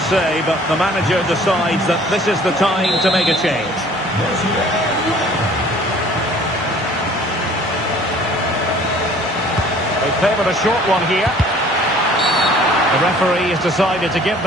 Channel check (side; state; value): both; normal; correlation 0.52